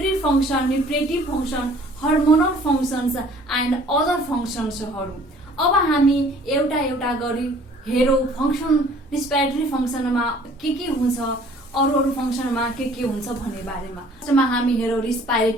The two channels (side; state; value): both; normal; correlation 0.54